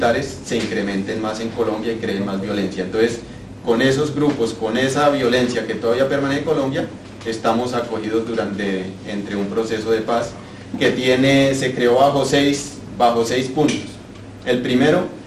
se incrementen más en Colombia y creen más violencia. Entonces, con esos grupos, con esa violencia que todavía permanece en Colombia, estamos acogidos entre un proceso de paz que se creó bajo seis puntos. El primero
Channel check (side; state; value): both; identical; correlation 1.00